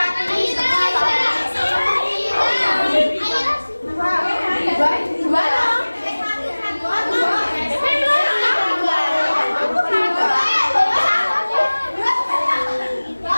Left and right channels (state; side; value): inverted; both; correlation -1.00